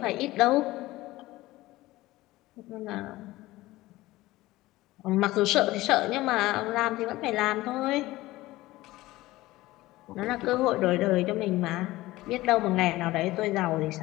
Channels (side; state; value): right; quieter; 18.0 dB